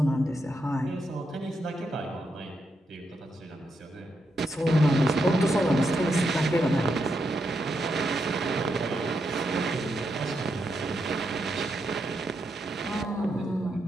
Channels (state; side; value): normal; both; correlation 0.82